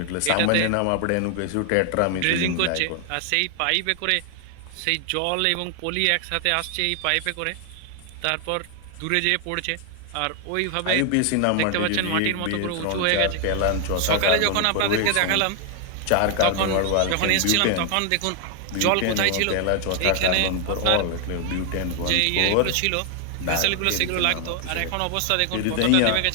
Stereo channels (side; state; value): both; different; correlation 0.00